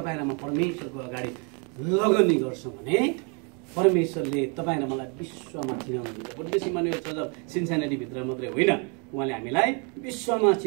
र म परमेश्वरको अगाडि लगनी गर्छौँ भने परमेश्वरले तपाईँ र मलाई विश्वमा चिनाउनुहुन्छ। बुद्धिस्ट इमानुएल चर्च सिन्सानिटीभित्र मात्रै होइन, उहाँले हामीलाई विश्वमा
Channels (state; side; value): quieter; left; 35.3 dB